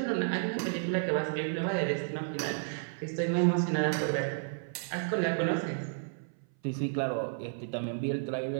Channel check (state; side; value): silent; left; 56 dB below the other